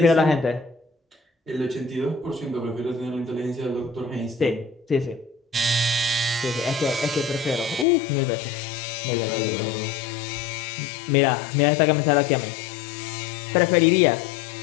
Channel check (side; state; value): right; drops out; at 7.9 s